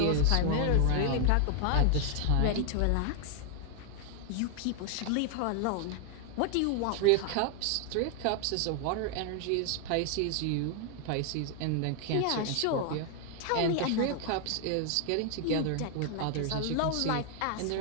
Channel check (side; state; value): both; different; correlation 0.00